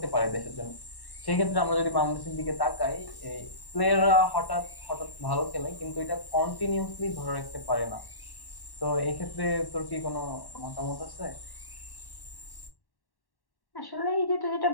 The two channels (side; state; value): right; late; 1.1 ms